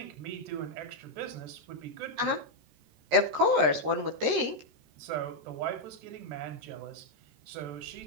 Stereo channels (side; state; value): left; late; 13 ms